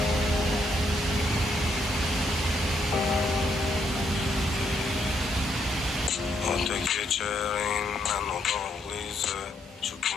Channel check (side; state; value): both; normal; correlation 0.74